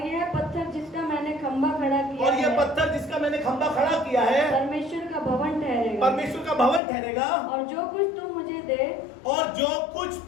यह पत्थर जिसका मैंने खंभा खड़ा किया और यह है, पत्थर जिसका मैंने खंभा खड़ा किया है, परमेश्वर का भवन ठहरेगा। परमेश्वर का भवन ठहरेगा। और जो कुछ तू मुझे दे, और जो कुछ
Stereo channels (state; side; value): drops out; right; at 6.8 s